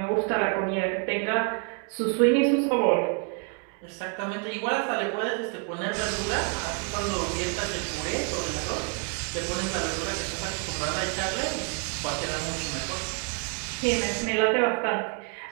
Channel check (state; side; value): quieter; left; 34.4 dB